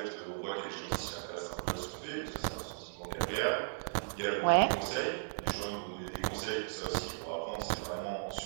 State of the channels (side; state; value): left; silent; 54 dB below the other